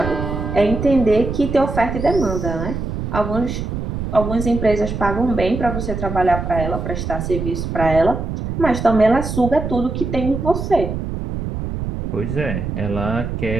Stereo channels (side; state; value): right; noise; rumble, 4 dB below the sound